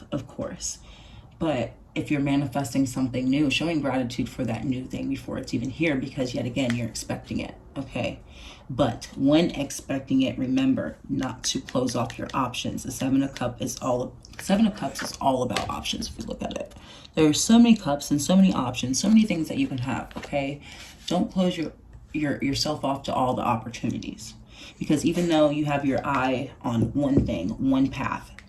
of course. But if you're manifesting something new, showing gratitude for that new thing before it's even here, because yet again, you're expecting it, okay? But when expecting it, remember not to close off your options. The Seven of Cups is all about options if you look at it. There are so many cups and so many options, so many things that you can have, okay? Don't close yourself off to all the opportunities. Because even though you have your eye on one thing, one path,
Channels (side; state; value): both; identical; correlation 1.00